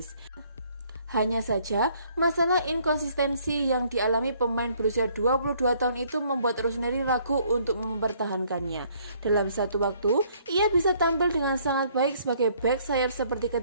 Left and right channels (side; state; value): both; inverted; correlation -0.63